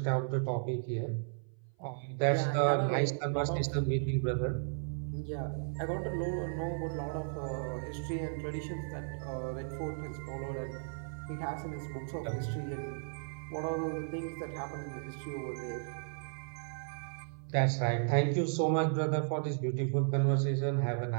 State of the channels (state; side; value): silent; left; 55 dB below the other